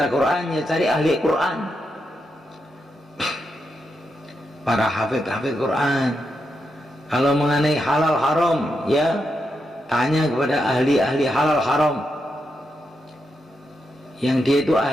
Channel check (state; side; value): normal; both; correlation 0.84